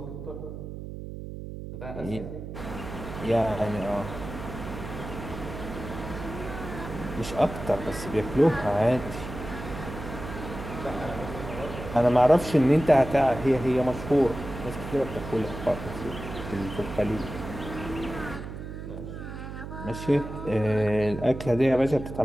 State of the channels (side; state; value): right; noise; hum, 9 dB below the sound